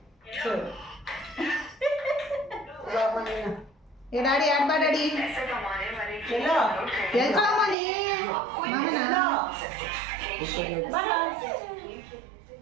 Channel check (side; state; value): left; drops out; at 7.8 s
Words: ಏ ಡ್ಯಾಡಿ ಆಡ್ಬಾ ಡ್ಯಾಡಿ. ಎಲ್ಲೋ ಎಲ್ಕೊಳಮ್ಮ ನೀ ಮಾಮನ